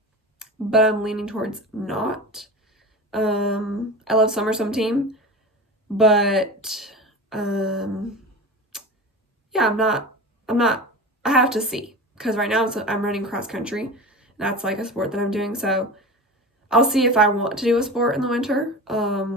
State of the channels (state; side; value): normal; both; correlation 0.30